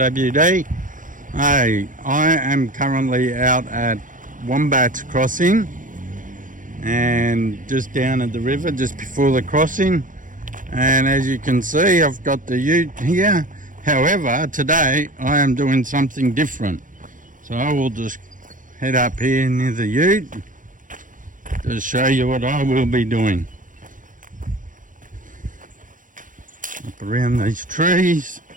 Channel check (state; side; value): late; left; 0.38 ms